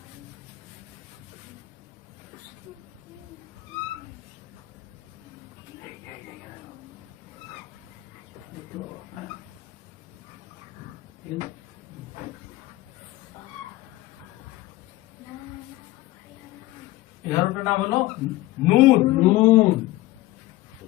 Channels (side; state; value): right; quieter; 18.1 dB